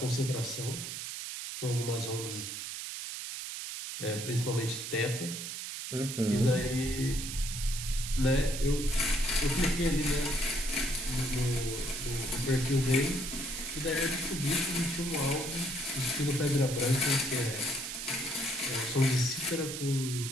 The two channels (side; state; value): right; noise; hiss, 6 dB below the sound